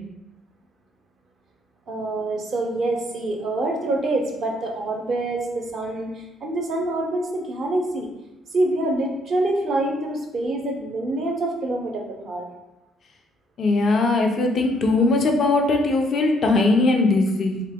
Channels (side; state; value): both; normal; correlation 0.68